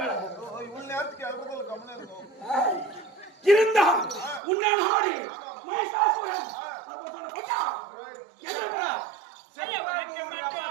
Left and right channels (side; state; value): left; drops out; at 4.4 s